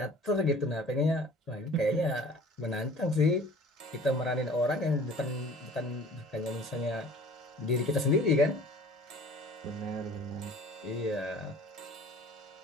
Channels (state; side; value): normal; both; correlation 0.46